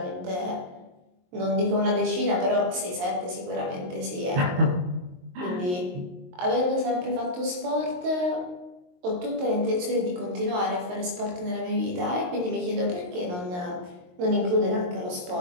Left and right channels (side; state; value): left; late; 22 ms